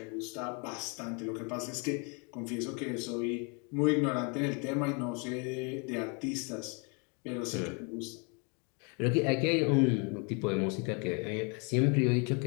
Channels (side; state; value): right; quieter; 34.5 dB